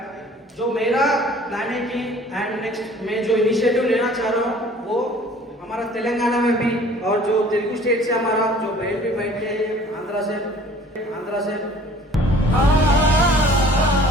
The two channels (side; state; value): both; normal; correlation 0.51